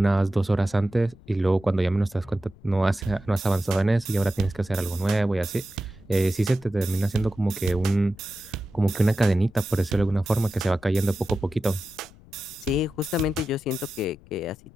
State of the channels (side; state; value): left; noise; rumble, 24 dB below the sound